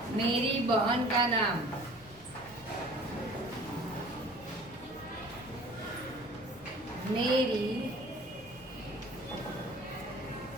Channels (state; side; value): noise; left; rumble, 24 dB below the sound